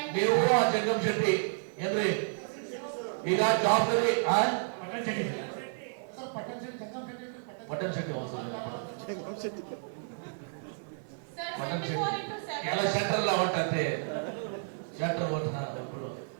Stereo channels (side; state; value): left; silent; 57 dB below the other